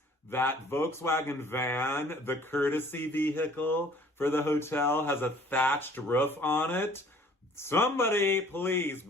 that Volkswagen van, the courtesy vehicle for the hotel, has a thatched roof on it. Somebody, please,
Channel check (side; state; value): both; normal; correlation 0.54